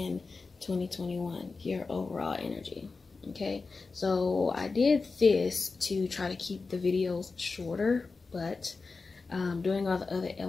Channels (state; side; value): quieter; right; 4.2 dB